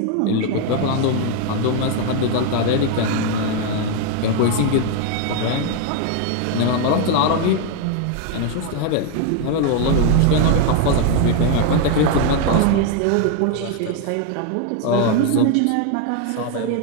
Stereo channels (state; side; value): different; both; correlation 0.01